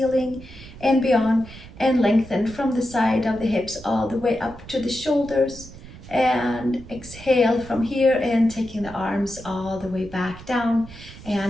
and beyond, and lengthen from the side of the hips all the way up to the shoulders. And exhale from here and taking the arms all the way back down.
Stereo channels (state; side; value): noise; right; rumble, 17 dB below the sound